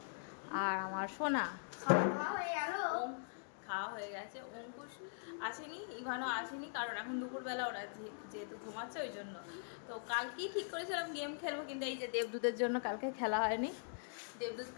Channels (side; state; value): right; silent; digital silence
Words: আর আমার সোনা খাওয়া হয়ে গেছে। অঙ্কুশ আসেনি, ইভানও আসেনি, কারণ এখন দুপুরবেলা ওরা যেহেতু ঘুমাচ্ছে ওই জন্য। তো কালকেই ঠিক করেছিলাম গেম খেলবো, কিন্তু এই যে দেবদূতের জন্য কালকে খেলা হয়নি। দেবদূত